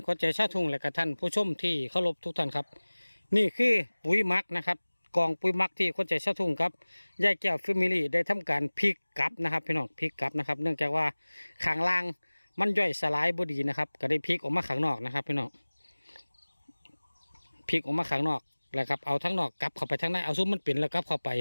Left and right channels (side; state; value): both; inverted; correlation -1.00